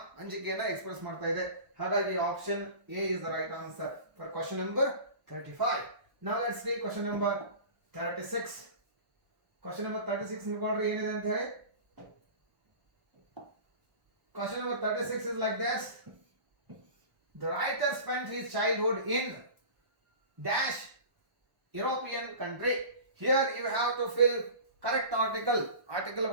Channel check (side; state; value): left; late; 1.1 ms